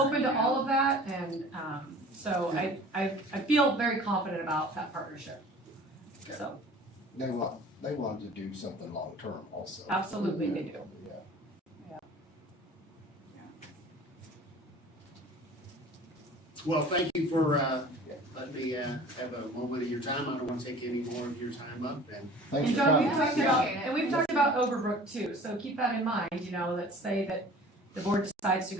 open to about. all of that, and so I feel very confident about that partnership. So, They want to do something long-term also. absolutely they do. Yeah. Well, thank you for, letting me, have a moment of your time. I don't want to take any more of your time up, and Thanks And for John, coming. we've talked about Overbrook too, so keep that in mind, let's say that the board decides to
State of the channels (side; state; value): both; normal; correlation 0.45